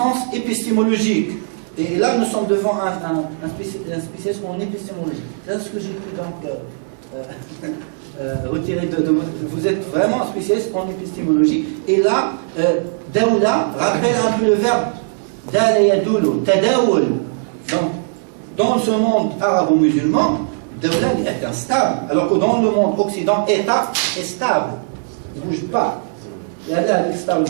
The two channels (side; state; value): left; silent; 67 dB below the other